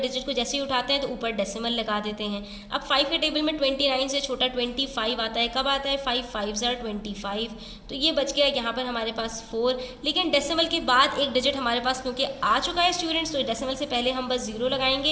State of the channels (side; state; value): both; identical; correlation 1.00